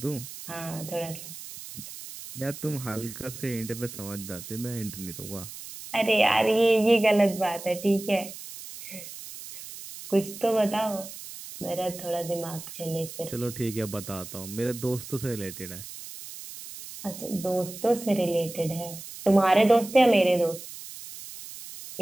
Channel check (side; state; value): right; noise; hiss, 13 dB below the sound